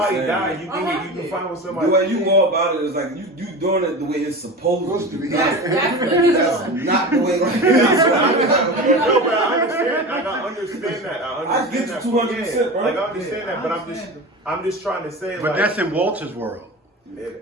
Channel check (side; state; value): both; normal; correlation 0.29